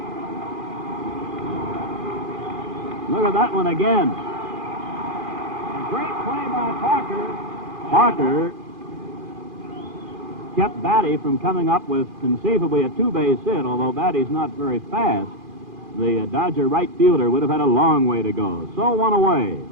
Look at that one again. A great play by Parker. Parker kept Batty from coming up with conceivably a two-base hit, although Batty's not very fast. The Dodger right fielder would have had a long way to go. So one away.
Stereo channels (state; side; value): late; left; 2.4 ms